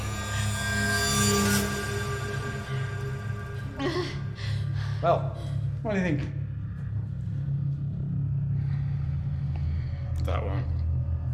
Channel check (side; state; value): both; identical; correlation 1.00